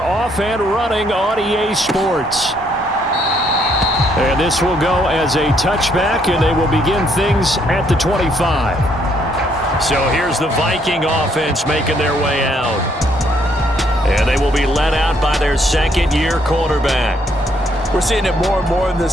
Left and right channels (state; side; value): normal; both; correlation 0.70